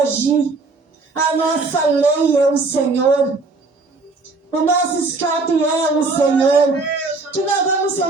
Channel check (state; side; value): quieter; left; 3.7 dB